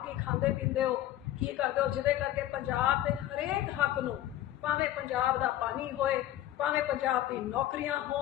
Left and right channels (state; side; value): quieter; right; 13.4 dB